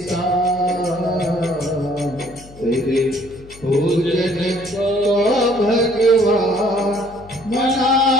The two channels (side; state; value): left; noise; hum, 21 dB below the sound